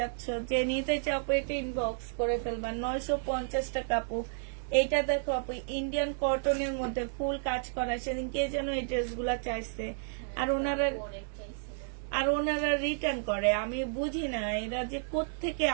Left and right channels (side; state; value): left; silent; digital silence